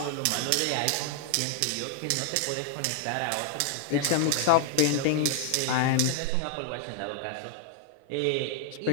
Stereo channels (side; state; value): both; different; correlation 0.00